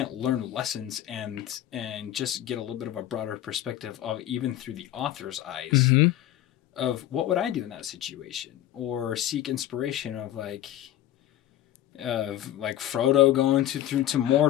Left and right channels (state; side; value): quieter; right; 12.8 dB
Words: learn lessons and just get a little bit of a broader perspective of even through the author's eyes of what would I do in that situation, or seek inspiration of like Frodo going through to